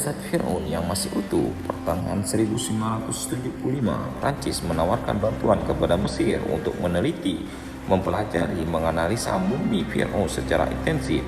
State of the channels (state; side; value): identical; both; correlation 1.00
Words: Fir'aun yang masih utuh. Pertengahan 1975, Prancis menawarkan bantuan kepada Mesir untuk meneliti, mempelajari, menganalisa mumi Fir'aun secara intensif.